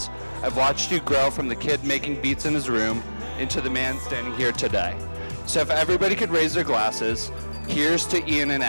I've watched you grow from the kid making beats in his room into the man standing here today. So if everybody could raise their glasses, here's to Ian and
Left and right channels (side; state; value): both; inverted; correlation -1.00